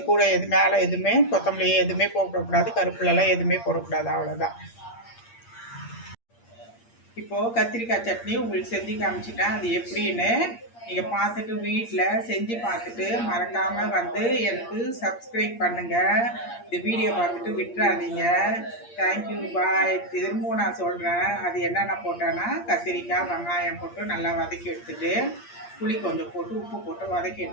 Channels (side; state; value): right; late; 8.6 ms